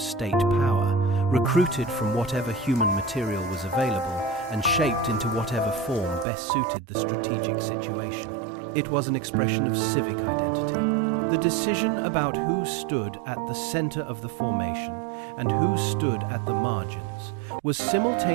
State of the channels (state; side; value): drops out; left; at 6.2 s